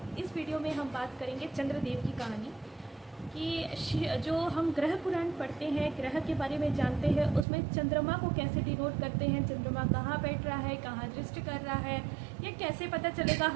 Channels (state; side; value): drops out; left; at 7.5 s